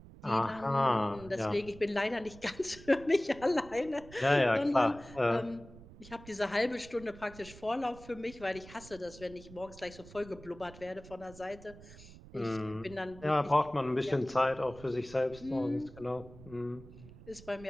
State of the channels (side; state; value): right; noise; rumble, 18 dB below the sound